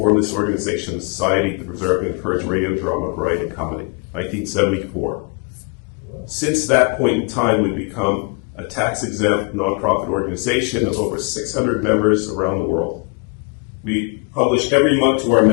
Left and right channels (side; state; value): right; quieter; 34.5 dB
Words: this organization, the Society to Preserve and Encourage Radio, Drama, Variety, and Comedy, 1974. Since that point in time, we've become a tax-exempt nonprofit organization of over 600 members around the world. We publish every month to our